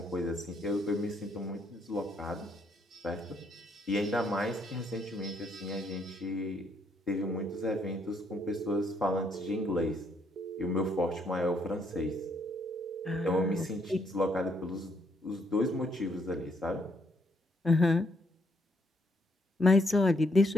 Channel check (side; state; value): both; normal; correlation 0.72